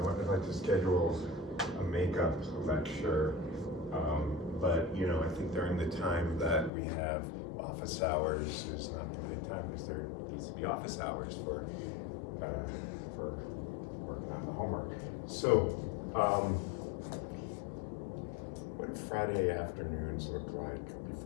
I'd like to schedule a makeup lecture, but you know, I think during the time that we have office hours is not the right time because there needs to be office hours for working on the homework. So, what do Friday afternoons look like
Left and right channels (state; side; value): drops out; right; at 6.7 s